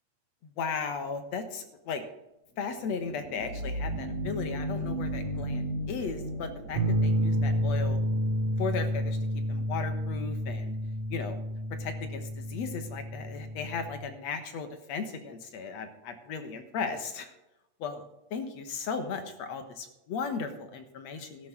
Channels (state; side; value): late; right; 8.4 ms